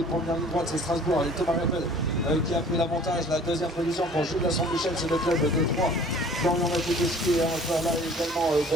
de première ligne droite, c'est Strasbourg et Thomas Rappel qui a pris l'avantage. La deuxième position pour Jules de Saint-Michel, c'est le club de Troyes. Florian Mathieu est encore là également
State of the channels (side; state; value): both; normal; correlation 0.50